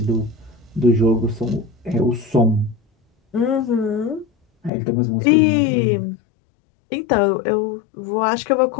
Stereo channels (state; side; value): drops out; right; at 4.7 s